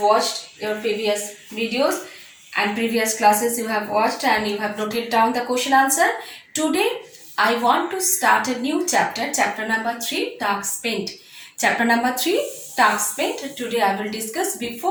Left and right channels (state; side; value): identical; both; correlation 1.00